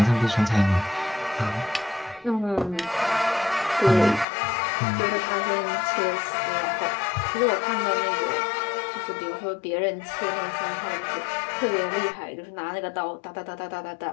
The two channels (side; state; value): right; drops out; at 4.2 s